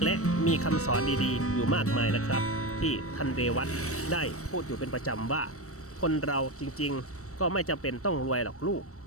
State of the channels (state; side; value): late; right; 0.65 ms